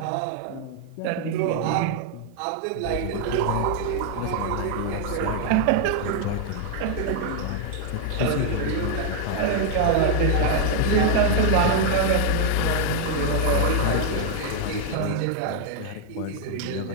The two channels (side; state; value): both; different; correlation 0.00